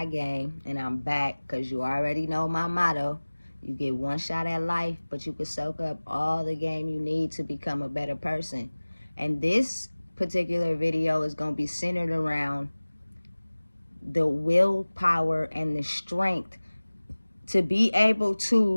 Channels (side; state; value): both; inverted; correlation -1.00